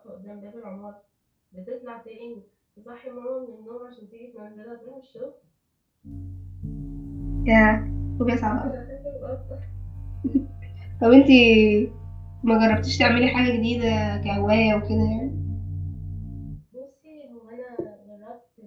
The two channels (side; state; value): both; identical; correlation 1.00